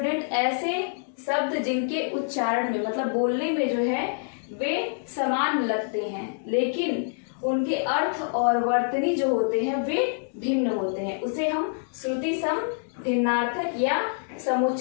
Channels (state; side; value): silent; right; digital silence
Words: ऐसे शब्द जिनके उच्चारण में मतलब बोलने में जो है वे समान लगते हैं लेकिन उनके अर्थ और वर्तनी जो होते हैं वे भिन्न होते हैं, उसे हम श्रुतिसम भिन्नार्थक या